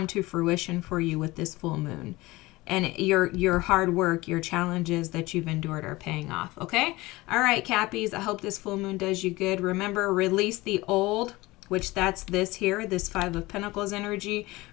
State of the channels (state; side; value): quieter; right; 20.7 dB